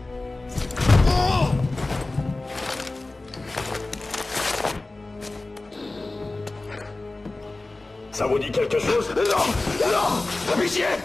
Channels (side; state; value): right; quieter; 3.1 dB